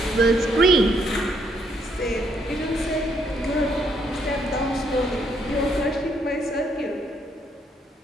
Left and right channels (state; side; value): normal; both; correlation 0.72